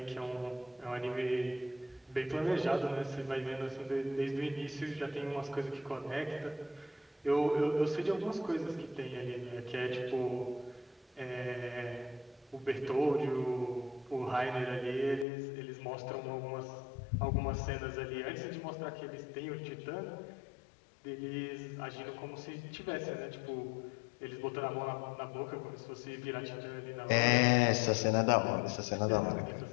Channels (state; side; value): drops out; right; at 15.2 s